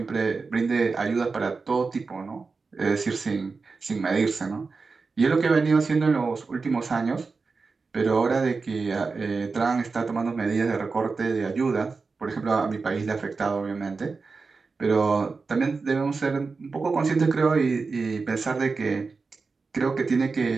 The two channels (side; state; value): left; quieter; 4.4 dB